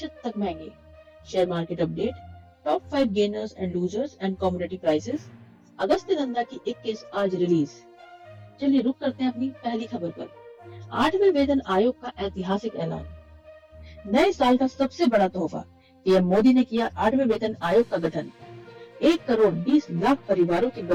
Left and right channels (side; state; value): both; identical; correlation 1.00